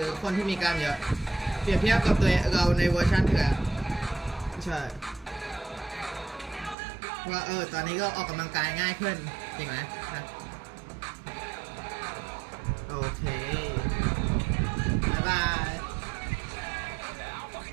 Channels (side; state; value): left; drops out; at 6.8 s